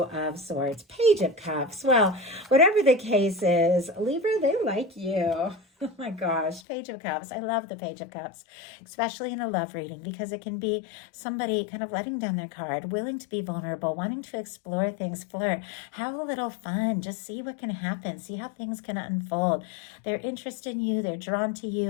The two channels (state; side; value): drops out; right; at 6.6 s